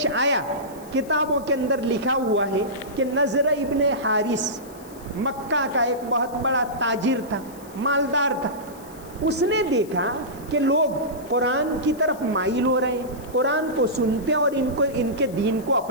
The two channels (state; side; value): noise; left; hiss, 22 dB below the sound